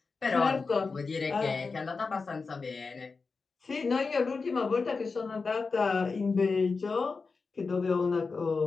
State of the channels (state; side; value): quieter; right; 4.5 dB